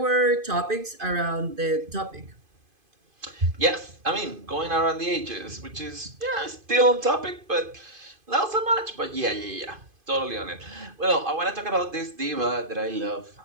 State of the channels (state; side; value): late; left; 2.5 ms